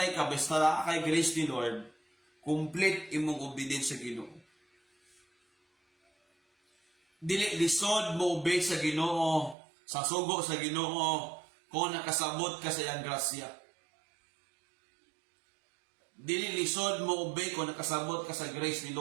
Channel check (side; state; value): left; drops out; at 9.6 s